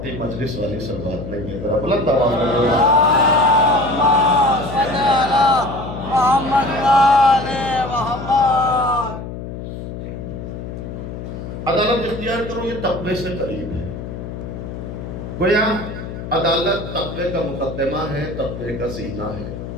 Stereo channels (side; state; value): left; noise; hum, 9 dB below the sound